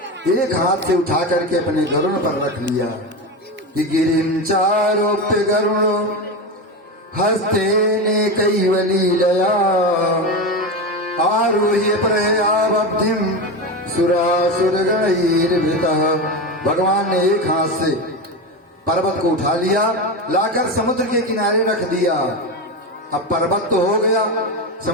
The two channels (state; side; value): normal; both; correlation 0.19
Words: एक हाथ से उठा करके अपने गरुड़ पर रख लिया कि गिरिं चारोप्य गरुणो हस्ते ने कैवली दया आरोह्य प्रयावब्धिम सुरासुरगणैर्भृतः। भगवान ने एक हाथ से पर्वत को उठा लिया, लाकर समुद्र के किनारे रख दिया। अब पर्वत तो हो गया,